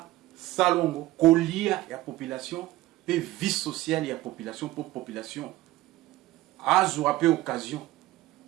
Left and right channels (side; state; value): left; quieter; 17.2 dB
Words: salongo kolia ya population pe vie sociale ya population pour population azwa pe occasion